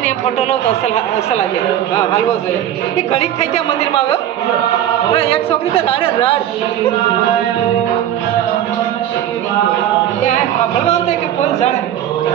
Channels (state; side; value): quieter; left; 11.3 dB